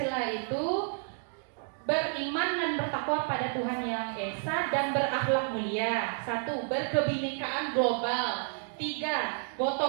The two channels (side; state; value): left; silent; 57 dB below the other